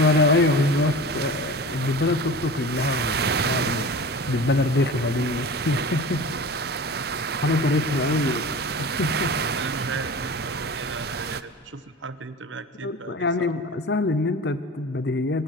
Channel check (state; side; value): normal; both; correlation 0.35